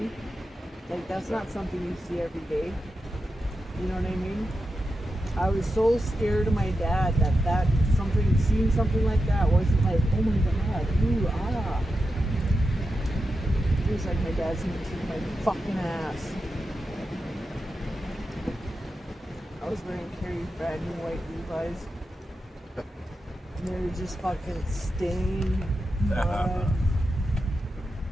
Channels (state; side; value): normal; both; correlation 0.89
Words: Like that's not something you see every day. You know what I mean? I was so scared of my dad that seeing something like that wasn't like, oh my god, ooh, ah. It was like my dad's gonna kick my fucking ass. I was wearing Carrie's brand new white Levi's. And they were just fucking stained mud.